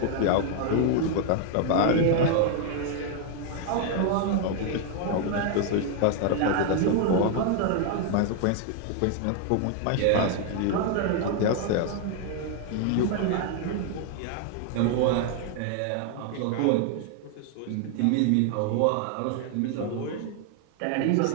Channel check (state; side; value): different; both; correlation 0.00